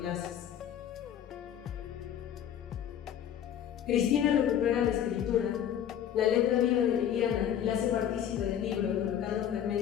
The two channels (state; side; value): quieter; right; 9.8 dB